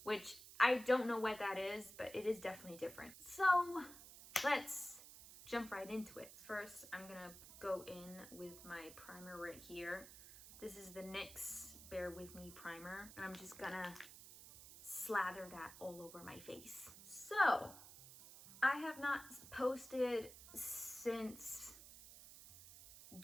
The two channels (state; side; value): noise; right; hiss, 16 dB below the sound